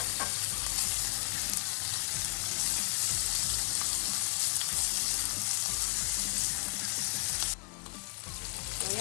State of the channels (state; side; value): quieter; right; 29.5 dB